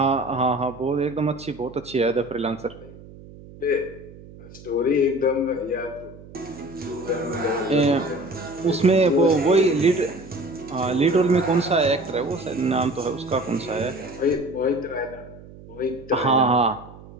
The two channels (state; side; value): noise; right; hum, 19 dB below the sound